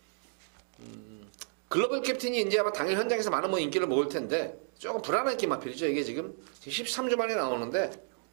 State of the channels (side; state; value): left; silent; digital silence